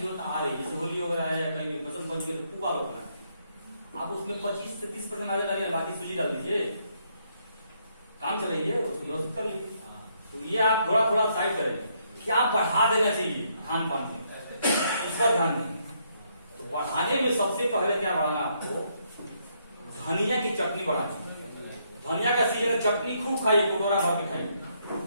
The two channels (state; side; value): inverted; both; correlation -0.73